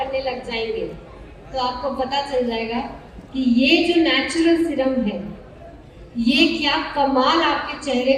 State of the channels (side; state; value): both; identical; correlation 1.00